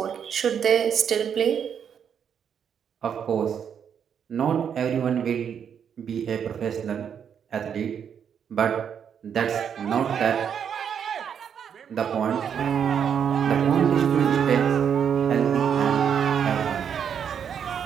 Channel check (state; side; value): quieter; left; 7.9 dB